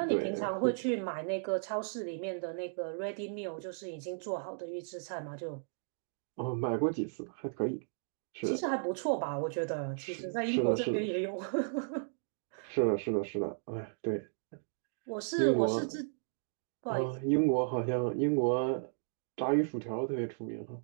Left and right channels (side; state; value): left; silent; digital silence